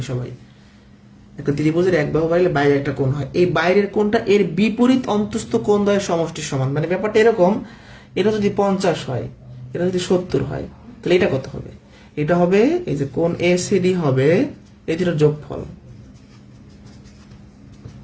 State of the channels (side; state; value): both; identical; correlation 1.00